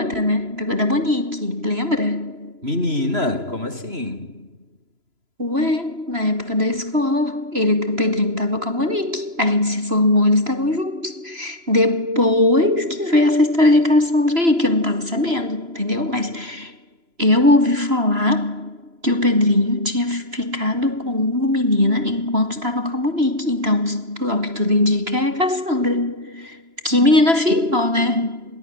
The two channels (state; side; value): late; left; 3.0 ms